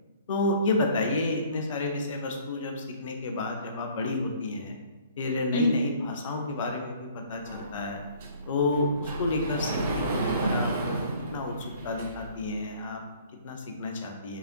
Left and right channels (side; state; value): both; inverted; correlation -0.54